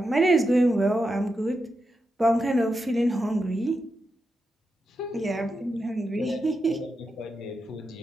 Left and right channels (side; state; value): both; normal; correlation 0.87